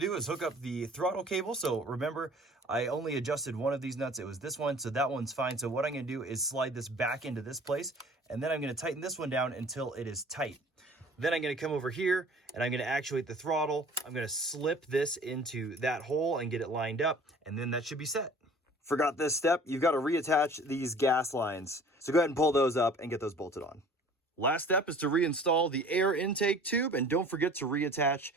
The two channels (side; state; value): both; normal; correlation 0.48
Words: is hook up the throttle cable. So remember, I only adjusted one of these nuts. It was this one, so that one's fine. So what I'm gonna do is slide this back into this place, and then I'm gonna tighten this one down until it is tight. Then I'm gonna come over here and I'm gonna actuate the throttle. I'm gonna slip this into that hole and get it lined up, and then that should be set. Forgot this step, you've got to reattach these gas lines. So go ahead and pull those up and get those bolted on. Last step is to reinstall the air intake tube, and don't forget to reattach